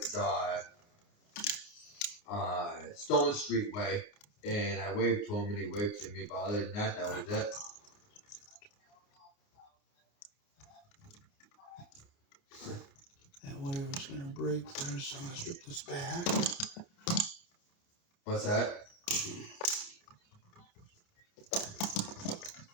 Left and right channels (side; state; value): right; late; 29 ms